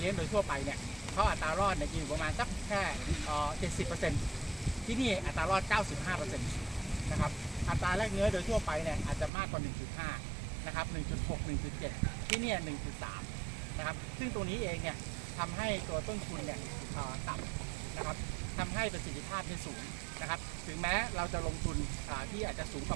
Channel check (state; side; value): drops out; left; at 9.3 s